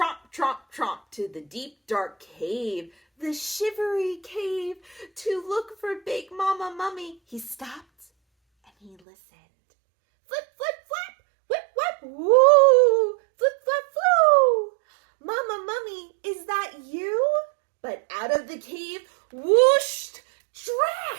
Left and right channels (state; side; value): drops out; left; at 9.0 s